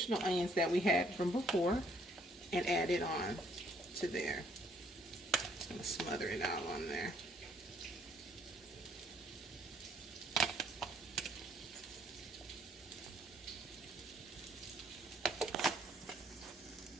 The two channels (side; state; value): both; normal; correlation 0.66